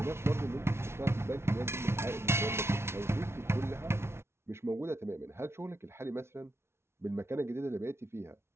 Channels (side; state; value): left; late; 0.12 ms